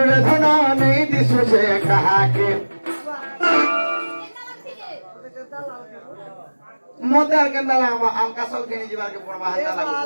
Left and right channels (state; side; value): inverted; both; correlation -1.00